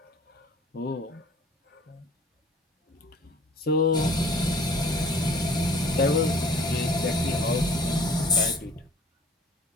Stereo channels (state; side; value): normal; both; correlation 0.51